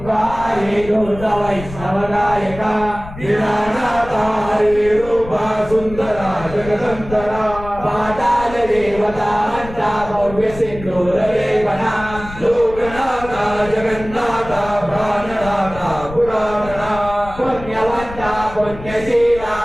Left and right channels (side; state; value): left; noise; rumble, 13 dB below the sound